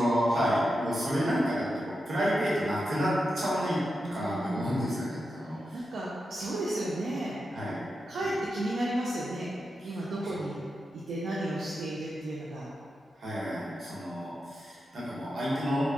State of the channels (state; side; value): normal; both; correlation 0.88